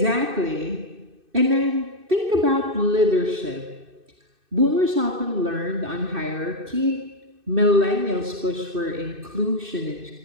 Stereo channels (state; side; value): late; left; 2.6 ms